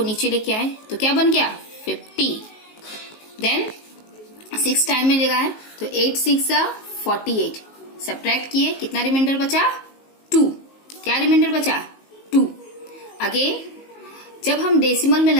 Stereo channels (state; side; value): late; right; 19 ms